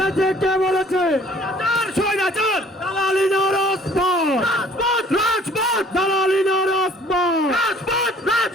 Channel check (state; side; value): normal; both; correlation 0.55